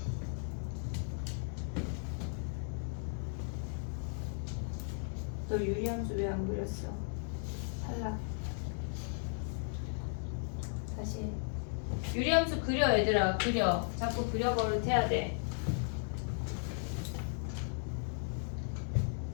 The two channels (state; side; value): silent; right; 54 dB below the other